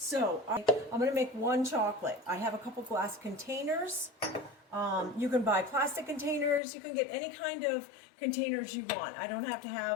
I'm going to make one chocolate. I have a couple glass containers. You can buy plastic containers. You can get any kind of containers you want. I don't have to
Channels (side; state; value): right; drops out; at 6.6 s